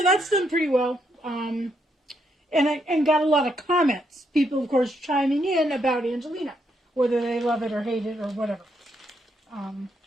that's done pretty well. And got a lot of comments. People, of course, chiming in about Angelina, whether they love it or hate it or whatever.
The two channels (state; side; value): normal; both; correlation 0.77